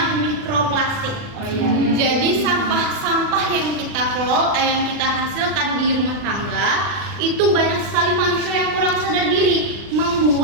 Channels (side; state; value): left; late; 40 ms